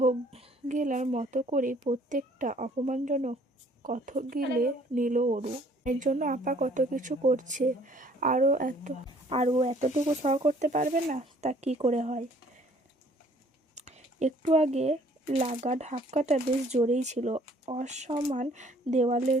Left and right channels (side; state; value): both; normal; correlation 0.58